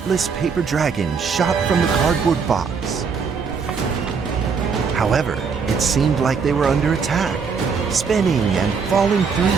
paper dragons shot from the cardboard box. However, it seemed like they were under attack, spinning and falling through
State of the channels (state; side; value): quieter; left; 5.7 dB